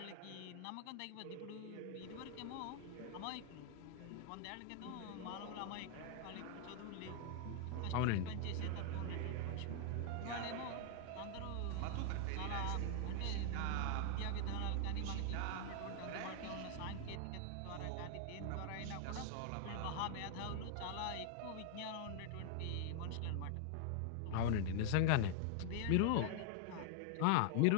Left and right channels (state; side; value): different; both; correlation 0.00